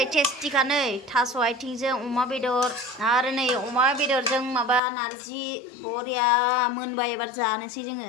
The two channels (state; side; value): drops out; right; at 4.8 s